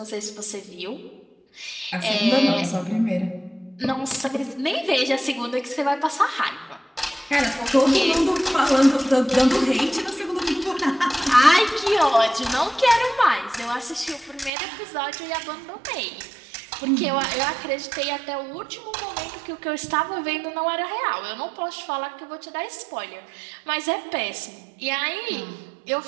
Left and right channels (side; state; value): left; drops out; at 14.5 s